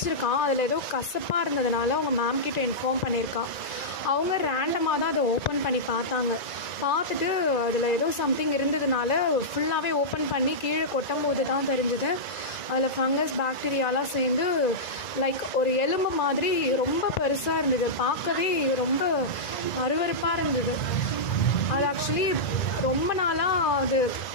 அதில் ஏதோ கசப்பாக இருந்ததுனால அவங்க மேம் கிட்ட இன்ஃபார்ம் பண்ணியிருக்கான். அவங்க ரேண்டமாக தான் அதை ஓப்பன் பண்ணி பார்த்துட்டு அதில் ஏதோ சம்திங் இருந்ததுனால ஃபுல்லாகவே ஓப்பன் பண்ணி கீழே கொட்டும்போது தான் தெரிஞ்சுது அதில் ஃபங்கஸ் பாக்டீரியாலாம் சேர்ந்து லைக் ஒரு எலும்பு மாதிரி ரொம்ப பெருசாக இருந்தது. பார்க்கவே ரொம்ப அருவருப்பாக இருந்தது. அது ஆக்சுவலி ரொம்ப நாளாக அது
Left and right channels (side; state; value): right; late; 1.9 ms